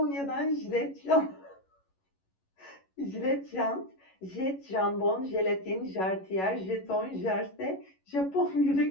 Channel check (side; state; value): right; late; 11 ms